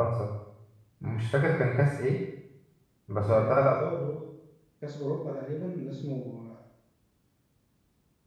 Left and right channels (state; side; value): identical; both; correlation 1.00